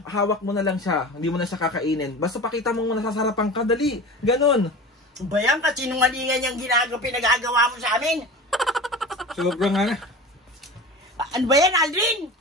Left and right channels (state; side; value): normal; both; correlation 0.33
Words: na. hawak mo na lang siya. Hindi mo na siya kakainin. Basta pakita mo nasasarapan ka, dali. Ganon. Ba yan? Kasinungalingan yung pinagagawa mo sa amin? Sobrang ano. Ano ba yan, Aldrin?